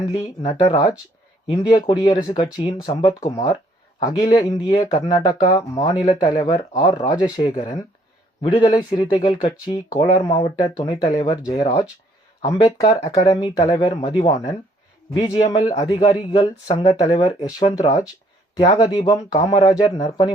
நடராஜ், இந்திய குடியரசு கட்சியின் சம்பத்குமார், அகில இந்திய கர்நாடகா மாநில தலைவர் ஆர். ராஜசேகரன், விடுதலை சிறுத்தைகள் கட்சி கோலார் மாவட்ட துணைத் தலைவர் ஜெயராஜ், அம்பேத்கர் அகாடமி தலைவர் மதிவாணன், பிஜிஎம்எல் அதிகாரிகள் சங்க தலைவர் யஷ்வந்த்ராஜ், தியாகதீபம் காமராஜர்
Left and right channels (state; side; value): normal; both; correlation 0.64